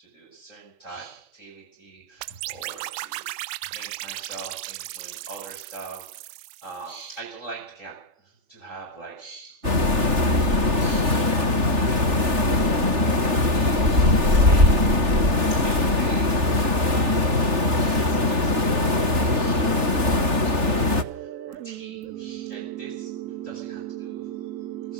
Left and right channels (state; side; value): late; left; 3.4 ms